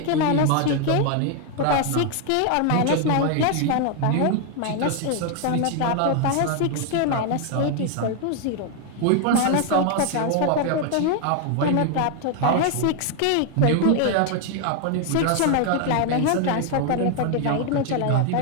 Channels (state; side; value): different; both; correlation 0.01